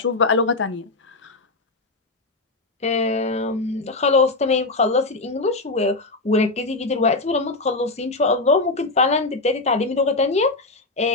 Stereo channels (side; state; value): right; quieter; 3.2 dB